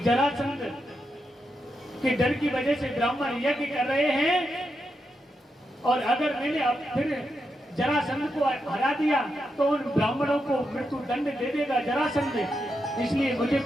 के डर की वजह से ब्राह्मण यज्ञ कर रहे हैं और अगर मैंने अब फिर जरासंध को हरा दिया तो उन ब्राह्मणों को मृत्यु दंड दे देगा जरासंध, इसलिए मुझे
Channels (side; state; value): both; normal; correlation 0.85